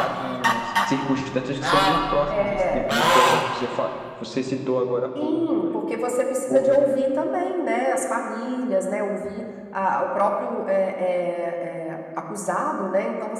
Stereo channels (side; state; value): both; identical; correlation 1.00